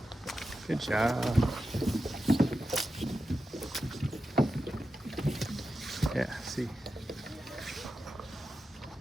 Good job. Yeah, see.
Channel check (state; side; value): normal; both; correlation 0.90